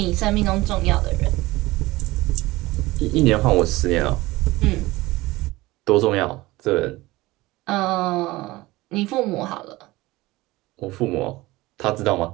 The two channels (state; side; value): quieter; left; 19.7 dB